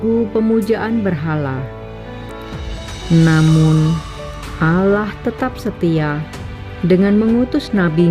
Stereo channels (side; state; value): both; identical; correlation 1.00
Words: pemujaan berhala. Namun Allah tetap setia dengan mengutus